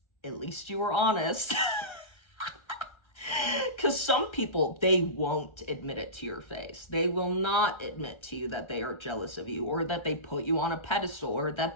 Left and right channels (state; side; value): late; right; 1.3 ms